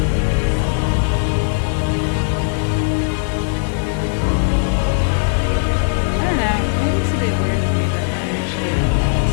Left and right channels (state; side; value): silent; right; digital silence